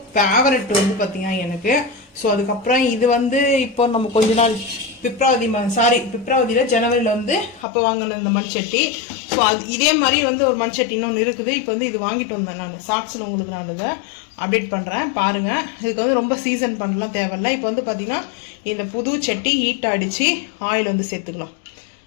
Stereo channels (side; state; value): right; drops out; at 7.7 s